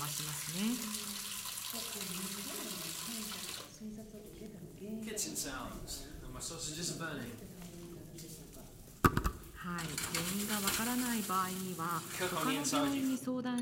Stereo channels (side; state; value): both; identical; correlation 1.00